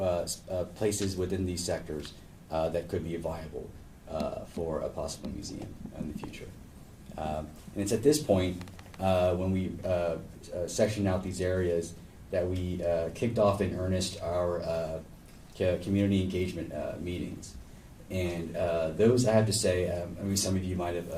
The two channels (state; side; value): identical; both; correlation 1.00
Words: places within these sectors that could be viable for a possible museum in the future. And it's at this point when we sectioned out these areas that we kicked off in earnest our community engagement meetings. And those, I have to say, some of you might